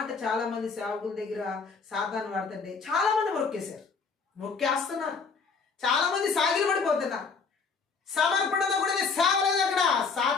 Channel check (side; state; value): right; quieter; 5.1 dB